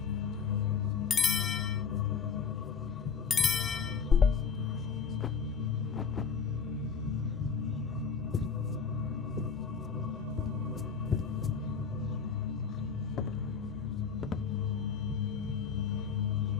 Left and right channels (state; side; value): quieter; right; 6.1 dB